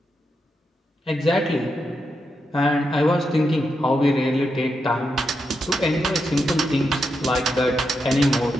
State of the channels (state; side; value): normal; both; correlation 0.84